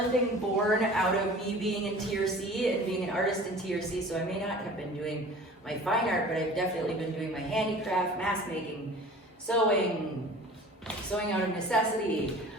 thing born out of me being in TRC and being an artist in TRC. So I may not have been doing my fine art, but I've definitely been doing my handicraft, mask making, sewing out of necessity.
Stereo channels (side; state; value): both; normal; correlation 0.43